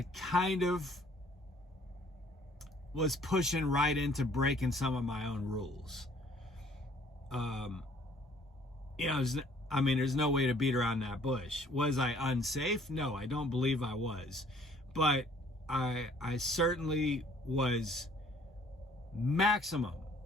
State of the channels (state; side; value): normal; both; correlation 0.58